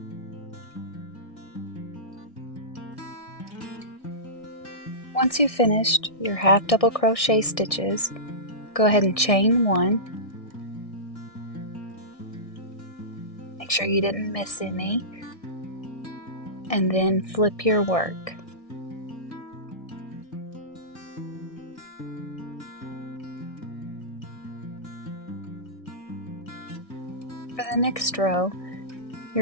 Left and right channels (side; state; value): right; late; 1.6 ms